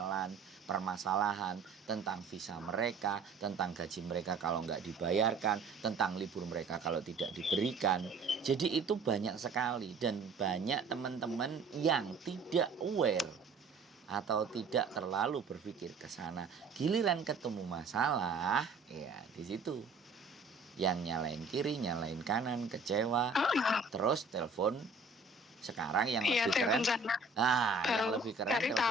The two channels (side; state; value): left; quieter; 4.0 dB